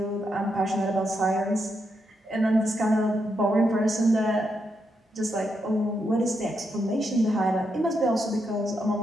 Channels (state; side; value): normal; both; correlation 0.82